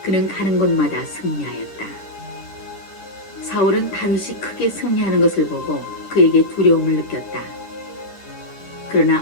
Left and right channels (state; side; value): late; right; 10 ms